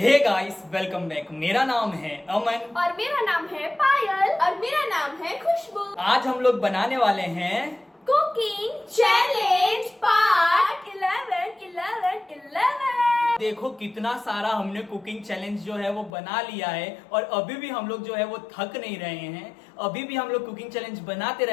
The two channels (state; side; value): drops out; right; at 16.1 s